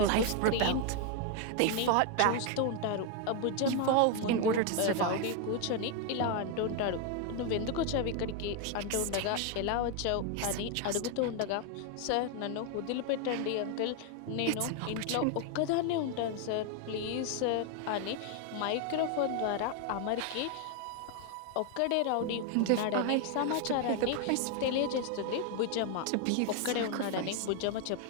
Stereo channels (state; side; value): different; both; correlation 0.01